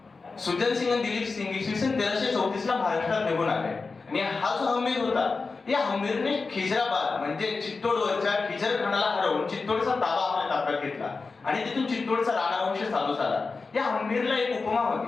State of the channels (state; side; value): quieter; right; 4.2 dB